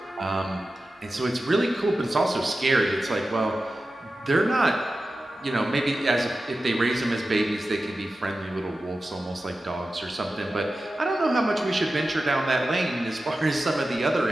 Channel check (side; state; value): both; normal; correlation 0.93